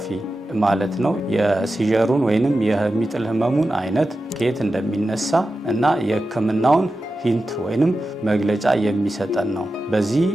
ማለት ነው። የሲጀሩን ወይንም የሚጥል ህመሙን አይነት ከየት እንደሚነሳ እና የህክምናውን ሂንት ወይንም መግለጫ የሚሰጠን ነው። በዚህ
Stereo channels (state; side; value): normal; both; correlation 0.92